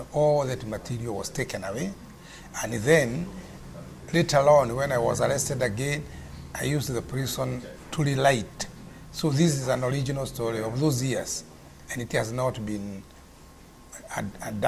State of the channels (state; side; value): identical; both; correlation 1.00